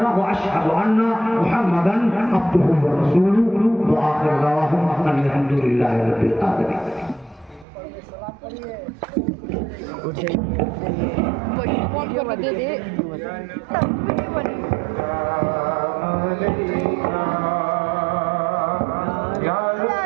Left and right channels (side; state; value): left; drops out; at 7.7 s